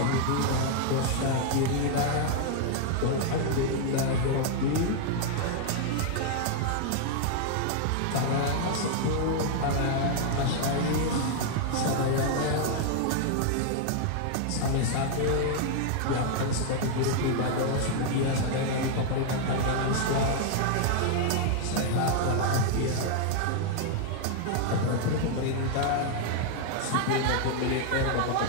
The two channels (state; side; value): different; both; correlation 0.00